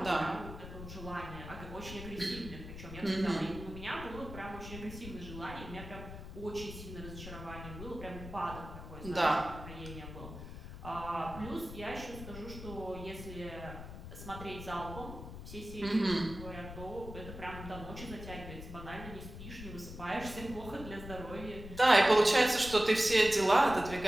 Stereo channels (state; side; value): noise; left; rumble, 11 dB below the sound